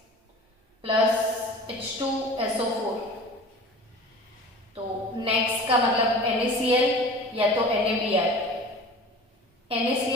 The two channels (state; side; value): normal; both; correlation 0.40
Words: प्लस H2SO4, तो नेक्स्ट का मतलब NaCl या तो NaBr।